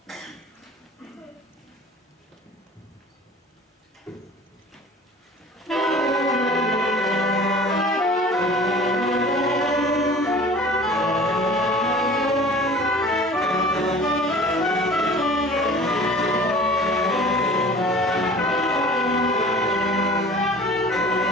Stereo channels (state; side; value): normal; both; correlation 0.44